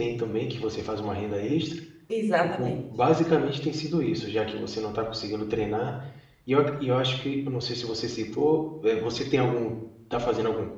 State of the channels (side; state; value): both; identical; correlation 1.00